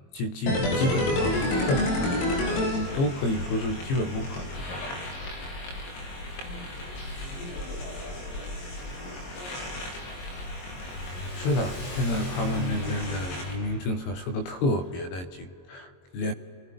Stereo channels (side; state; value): right; late; 22 ms